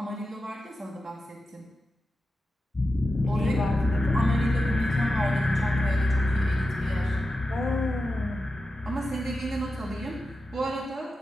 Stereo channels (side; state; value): both; normal; correlation 0.91